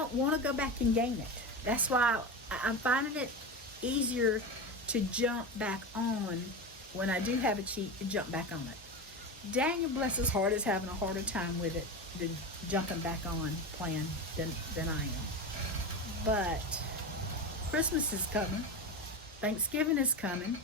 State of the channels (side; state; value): both; normal; correlation 0.22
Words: want to go back and gain it. That's why I'm finding it easier to jump back on when I do have a cheat, to jump back on it. Daniel, bless his heart, is having a harder time with it than jumping back on plan than I am. But Christmas is coming. Thanksgiving is coming.